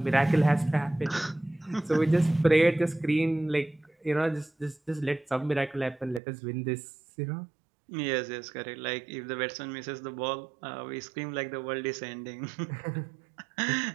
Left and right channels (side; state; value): left; drops out; at 6.2 s